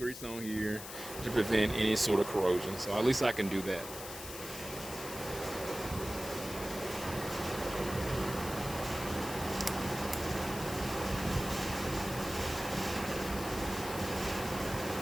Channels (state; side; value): noise; left; hiss, 10 dB below the sound